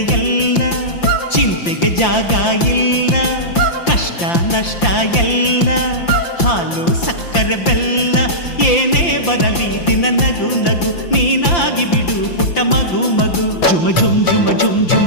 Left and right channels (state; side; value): late; right; 5.8 ms